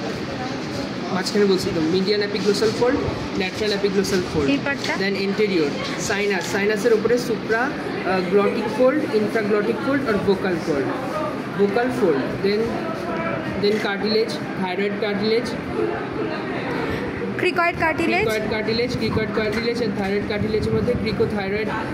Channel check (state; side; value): identical; both; correlation 1.00